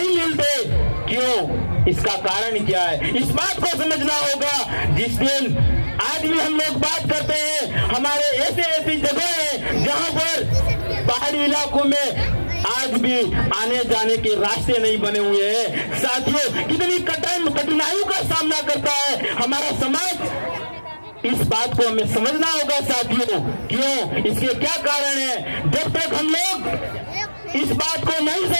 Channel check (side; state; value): both; inverted; correlation -1.00